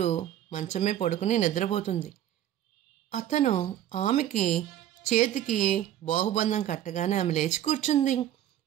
మంచమే పడుకుని నిద్రపోతుంది. అతను ఆమెకి చేతికి బాహుబంధం కట్టగానే ఆమె లేచి కూర్చుంది.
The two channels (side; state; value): left; quieter; 11.8 dB